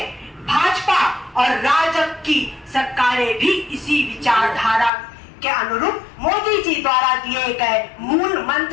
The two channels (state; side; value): drops out; right; at 4.9 s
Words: भाजपा और राजग की सरकारें भी इसी विचारधारा के अनुरूप मोदी जी द्वारा दिए गए मूल